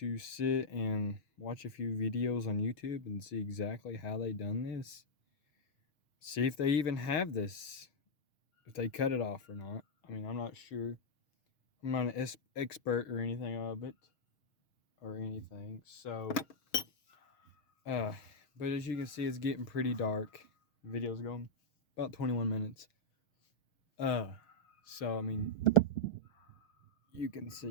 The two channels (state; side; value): late; right; 6.4 ms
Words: sit and watch a few videos on YouTube and see exactly how they done this. See if they even have this, if they cut it off or not. I mean, I'm not sure. I'm not an expert or anything of it or anything. So, but as you can see, it's getting pretty dark. The video's going about 21 minutes. So I mean, you can